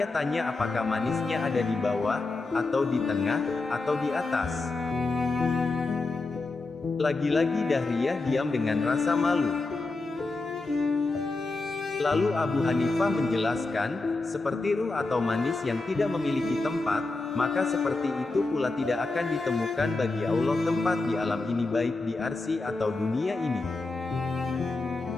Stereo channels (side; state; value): right; quieter; 3.4 dB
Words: tanya apakah manisnya ada di bawah, atau di tengah, atau di atas?" Lagi-lagi Dahriyah diam dengan rasa malu. Lalu Abu Hanifah menjelaskan, seperti ruh atau manis yang tidak memiliki tempat, maka seperti itu pula tidak akan ditemukan bagi Allah tempat di alam ini baik di arsy atau dunia ini.